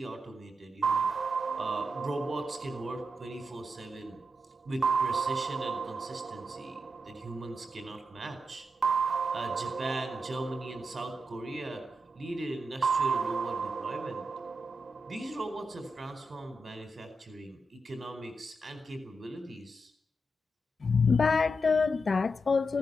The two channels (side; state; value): both; normal; correlation 0.86